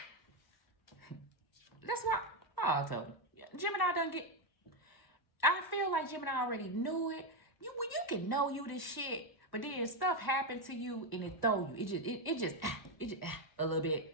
That's why, I told you. Gemini done get, I feel like Gemini already knew it. You can know you this shit, but then stuff happened to you and it throw you. It just a little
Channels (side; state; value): right; late; 1.1 ms